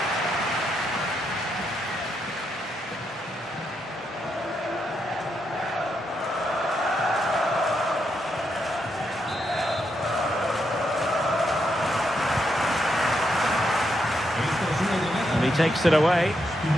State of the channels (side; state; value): both; normal; correlation 0.81